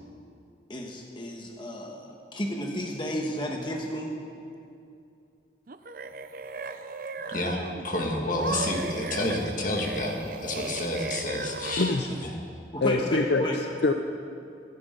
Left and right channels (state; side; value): normal; both; correlation 0.32